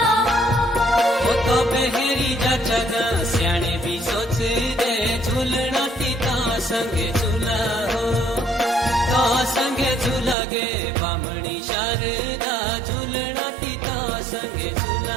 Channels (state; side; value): drops out; left; at 10.4 s